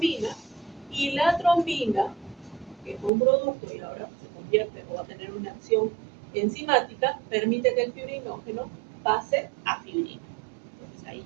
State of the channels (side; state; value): left; drops out; at 3.1 s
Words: y la trombina, que fue un producto y ahora se convierte o va a tener una acción enzimática, permite que el fibrinógeno pase a fibrina. Entonces ahí